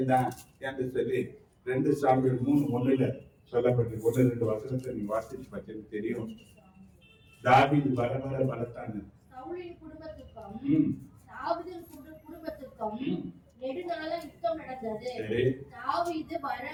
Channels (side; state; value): both; identical; correlation 1.00